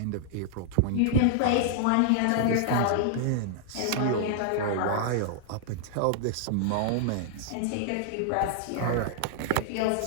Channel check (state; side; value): different; both; correlation -0.01